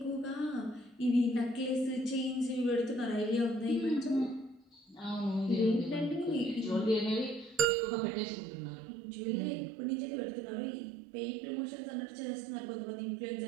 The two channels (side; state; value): left; drops out; at 7.7 s